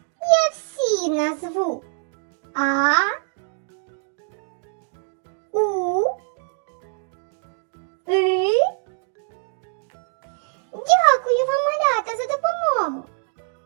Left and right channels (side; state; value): left; silent; 63 dB below the other